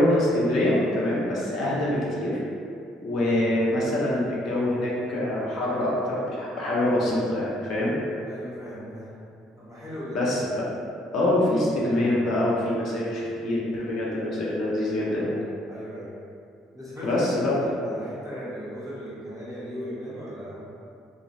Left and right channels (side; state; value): both; normal; correlation 0.66